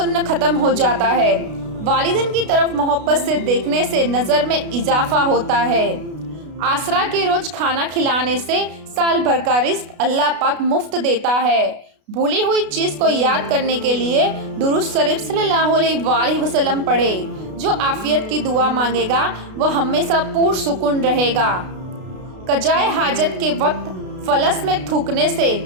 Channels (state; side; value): late; left; 32 ms